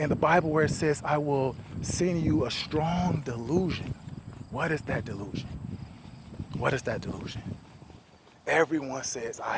the Bible where it says, I will send you a strong delusion. What is that delusion? What is that delusion? Everyone says, I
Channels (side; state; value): both; identical; correlation 1.00